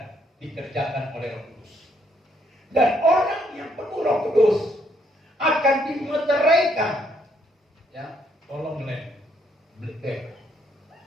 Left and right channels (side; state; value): both; normal; correlation 0.71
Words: dikerjakan oleh Roh Kudus. Dan orang yang penuh Roh Kudus akan dimeteraikan. Ya, tolong Black.